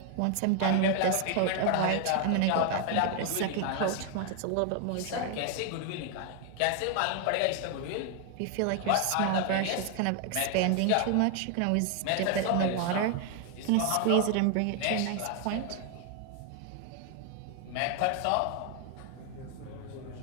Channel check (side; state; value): both; different; correlation 0.00